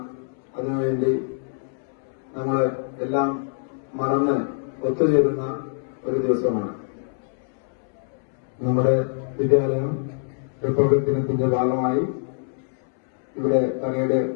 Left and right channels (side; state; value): right; silent; 62 dB below the other